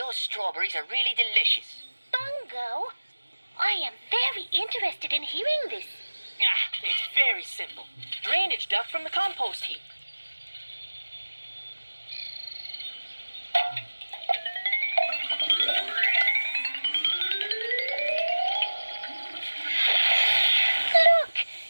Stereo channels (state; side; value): inverted; both; correlation -1.00